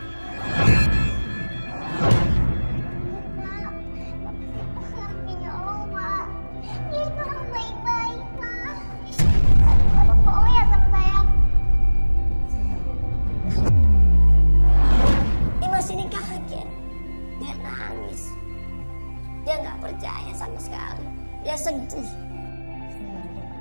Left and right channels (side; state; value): both; inverted; correlation -1.00